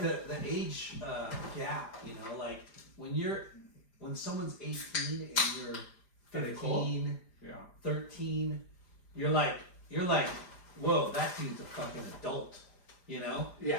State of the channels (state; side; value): late; right; 4.9 ms